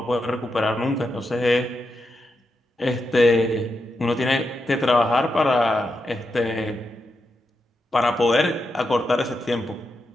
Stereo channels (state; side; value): normal; both; correlation 0.86